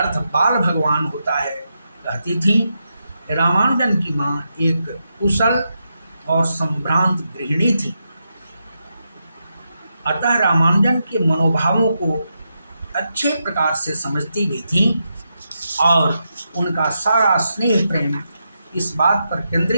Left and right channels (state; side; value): inverted; both; correlation -0.85